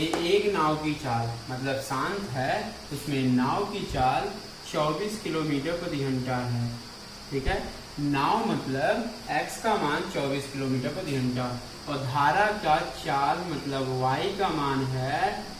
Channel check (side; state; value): both; identical; correlation 1.00